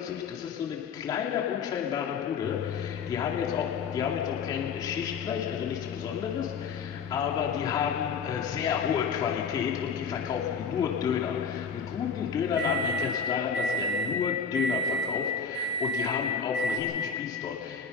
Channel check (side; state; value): right; quieter; 5.9 dB